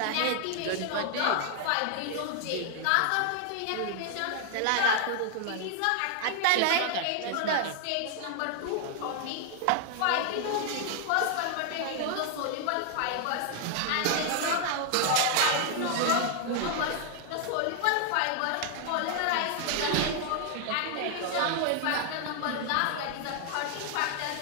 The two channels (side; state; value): both; different; correlation 0.00